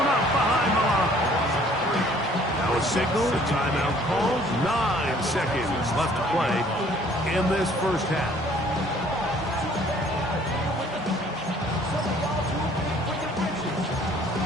up behind the line. Now a signal, a timeout called. 9 seconds left to play in this first half.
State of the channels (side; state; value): both; normal; correlation 0.57